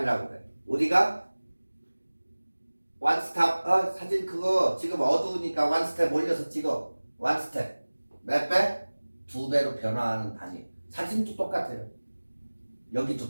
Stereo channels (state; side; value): inverted; both; correlation -1.00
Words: 해요. 우리가 원 스탑, 사진 그거 지금 어두우니까 원 스텝 올려서 찍어. 원 스텝. 몇 배? 2배로 변화하는 단위. 사진도 똑같아요. 여기도